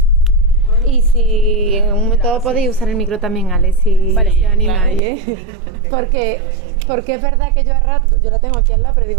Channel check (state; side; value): drops out; left; at 5.0 s